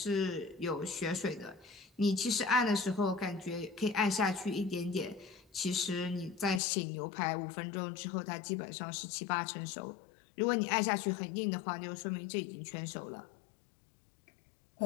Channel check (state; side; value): drops out; right; at 6.6 s